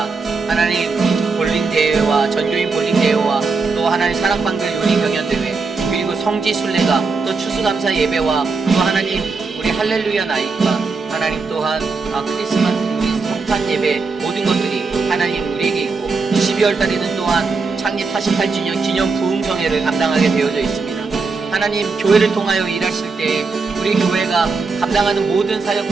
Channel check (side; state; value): left; quieter; 4.3 dB